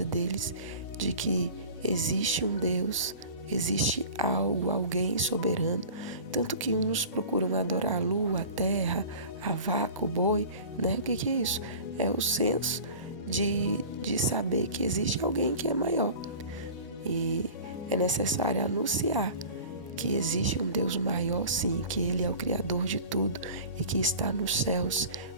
deles de que existe um Deus, existe algo, alguém soberano. Tanto que uns procuram adorar a lua, a terra, a vaca, o boi, né? O que é isso? É o senso de saber que existe alguém que é maior. E é necessário anunciar que existe um Deus maior, sim, que Ele é o Criador de tudo e que está nos céus,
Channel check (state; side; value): inverted; both; correlation -0.40